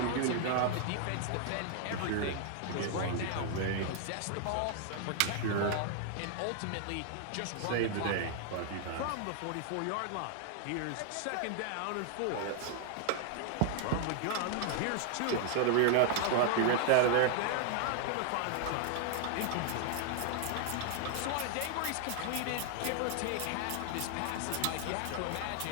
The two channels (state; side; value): different; both; correlation 0.00